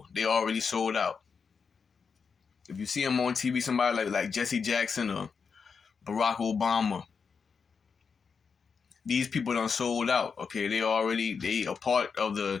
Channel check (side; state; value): right; quieter; 5.7 dB